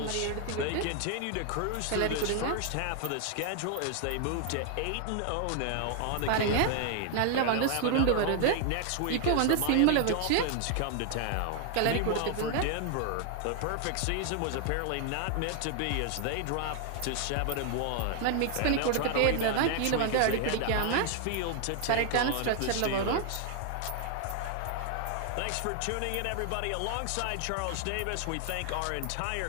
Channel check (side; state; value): both; different; correlation 0.00